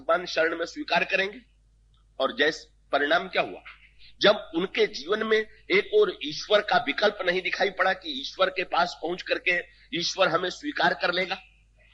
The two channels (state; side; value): identical; both; correlation 1.00